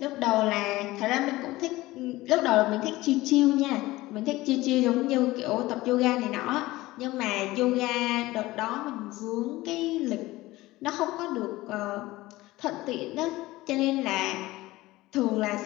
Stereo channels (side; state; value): right; quieter; 18.5 dB